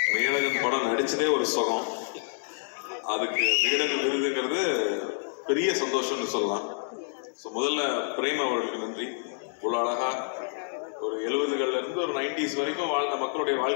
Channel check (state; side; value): silent; right; digital silence